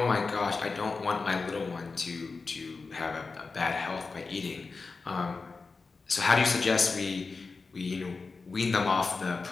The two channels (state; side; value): quieter; right; 4.3 dB